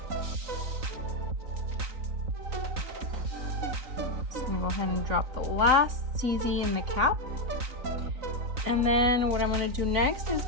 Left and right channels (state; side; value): late; left; 3.9 ms